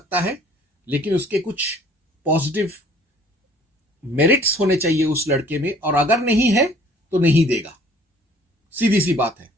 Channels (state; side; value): normal; both; correlation 0.55